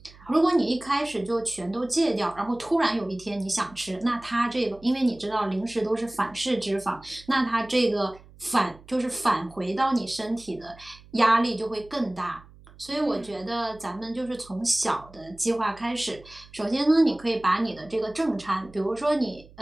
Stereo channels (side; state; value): right; noise; hum, 23 dB below the sound